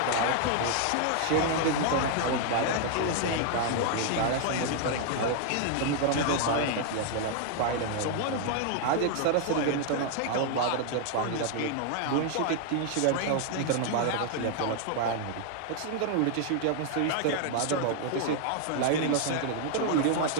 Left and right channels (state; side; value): different; both; correlation 0.00